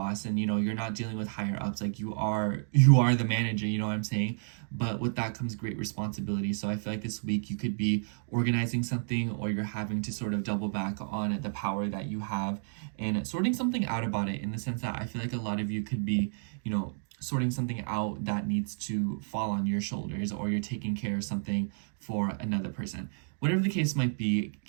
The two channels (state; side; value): silent; left; digital silence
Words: and, you know, you're not dealing with higher ups. Like you are the manager, you know what I'm saying? But with that comes great responsibility. So I feel like this week you could be organizing something, or you're having to sort of double back on the power that you have and sorting something out about it, in the sense that I feel like a lot of you could be, you know, sorting something out that needs to fall on your shoulders, or you're taking care of something for another person. Whatever the case might be,